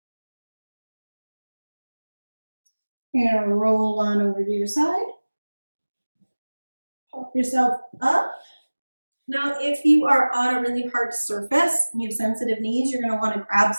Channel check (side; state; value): both; inverted; correlation -1.00